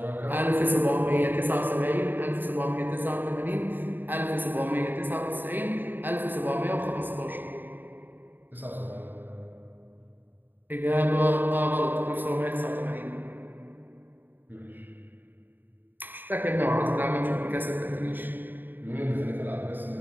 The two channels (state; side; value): late; left; 0.092 ms